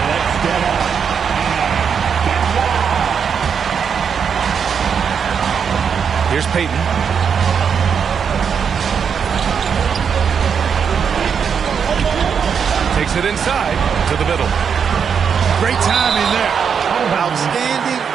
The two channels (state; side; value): quieter; left; 6.9 dB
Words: Let's get up. Here's Peyton. Takes it inside to the middle. Great timing there. Outstanding